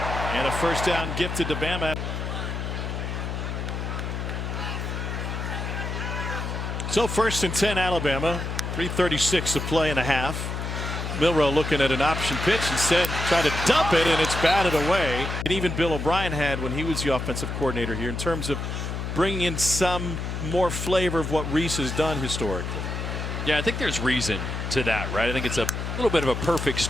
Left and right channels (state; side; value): noise; left; hum, 4 dB below the sound